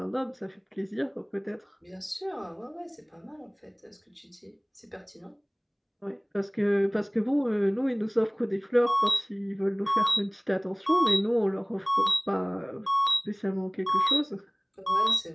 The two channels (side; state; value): both; identical; correlation 1.00